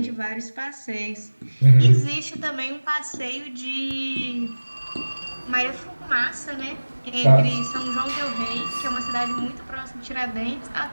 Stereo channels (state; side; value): inverted; both; correlation -1.00